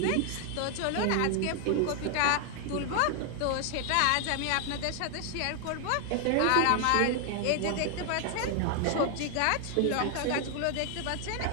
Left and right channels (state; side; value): different; both; correlation 0.00